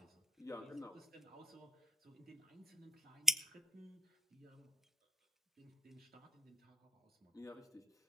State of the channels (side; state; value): both; normal; correlation 0.57